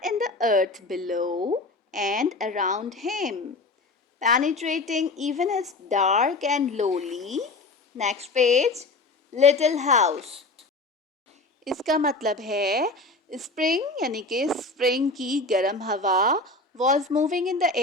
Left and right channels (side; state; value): right; quieter; 3.2 dB